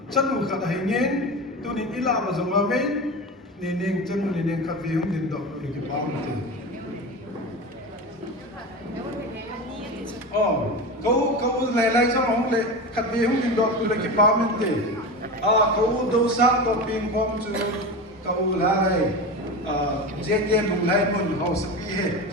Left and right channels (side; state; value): both; normal; correlation 0.25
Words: chanu khat hai ngen tu ni ila ma jong ma men ni neng chanu ni neng khat ve hum din do ki pa men te câu này lại cho ông lệ khát về không tin đọc tôi là cái bao mình thế câu đâu sáng đọc pin phong chú câu là này dễ dễ bùng lại một hậu sự gì hết